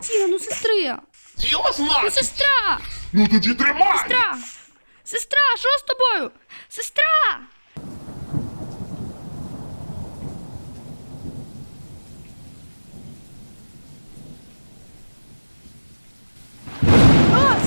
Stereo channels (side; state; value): both; inverted; correlation -1.00